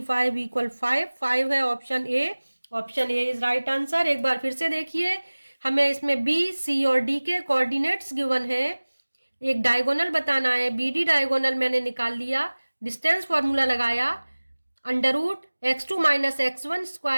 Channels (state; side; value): inverted; both; correlation -1.00